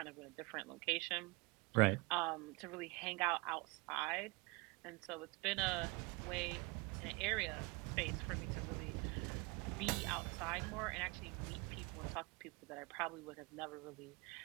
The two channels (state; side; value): quieter; left; 27.6 dB